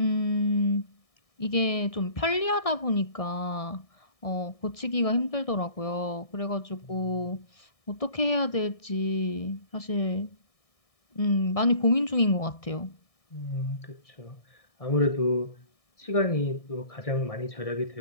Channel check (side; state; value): right; late; 1.6 ms